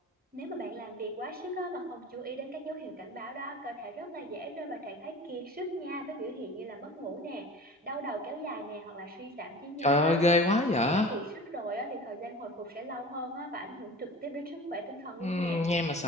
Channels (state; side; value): normal; both; correlation 0.39